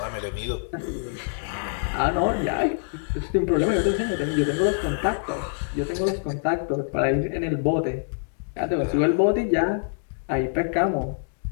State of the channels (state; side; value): silent; right; digital silence